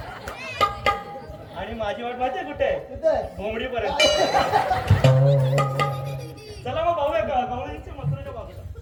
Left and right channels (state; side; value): identical; both; correlation 1.00